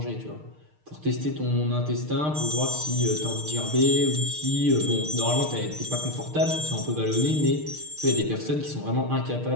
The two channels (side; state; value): left; late; 6.6 ms